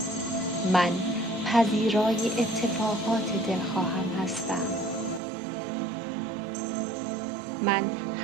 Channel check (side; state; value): left; drops out; at 5.2 s